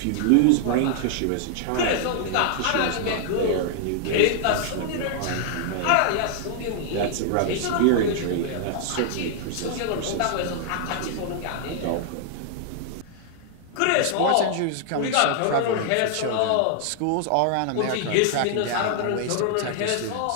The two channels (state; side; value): different; both; correlation 0.00